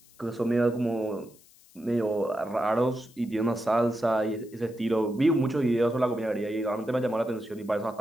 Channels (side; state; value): left; noise; hiss, 27 dB below the sound